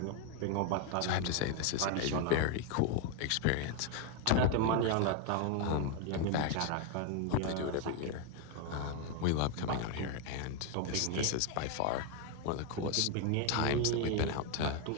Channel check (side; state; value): both; different; correlation 0.01